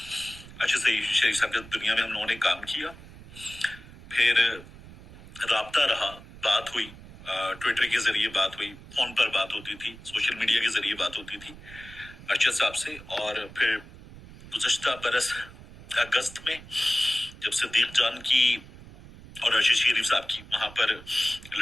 ارشد شریف صاحب کے دنیا میں ہم لوگوں نے کام کیا. پھر رابطہ رہا، بات ہوئی، ٹویٹر کے ذریعے بات ہوئی، فون پر بات ہوتی تھی، سوشل میڈیا کے ذریعے بات ہوتی تھی ارشد صاحب سے. اور پھر گزشتہ برس اگست میں جب صدیق جان کی اور ارشد شریف صاحب کی وہاں پر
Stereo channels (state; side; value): noise; right; rumble, 18 dB below the sound